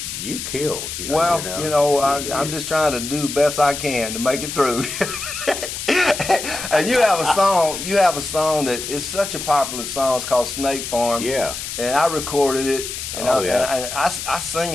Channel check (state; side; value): noise; left; hiss, 6 dB below the sound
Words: You killed. I'm just trying to do the best I can to make it through. And you have a song that is such a popular song. It's called Snake Farm. Yeah. And I recorded it, and I sing